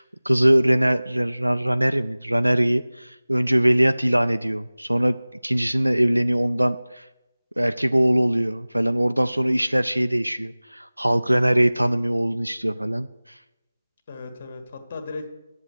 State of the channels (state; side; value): inverted; both; correlation -0.99